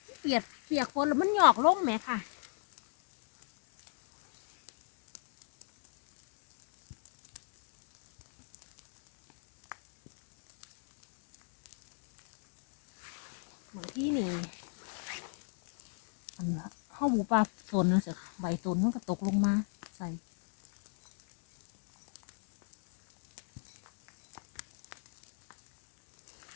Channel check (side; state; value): right; silent; 52 dB below the other